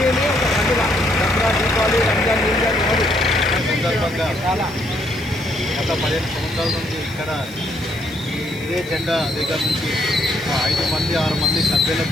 ఒక పండుగ. దసరా, దీపావళి, రంజాన్, ఇంజాన్ కాదు సందర్భంగా చాలా గత 15 సంవత్సరాల నుంచి ఇక్కడ ఇదే జెండా దగ్గర నుంచి 5 మంది 6 మంది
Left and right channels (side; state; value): right; noise; hiss, 21 dB below the sound